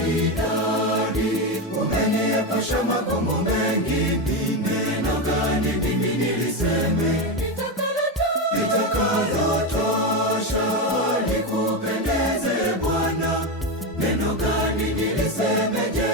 idadi. Umeniepusha magumu mengi, ni neno gani mimi niliseme litakalotosha likupendeze Bwana? Neno gani niliseme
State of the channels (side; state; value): both; normal; correlation 0.13